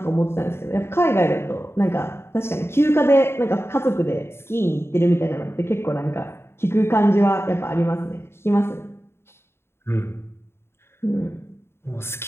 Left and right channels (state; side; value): late; right; 0.12 ms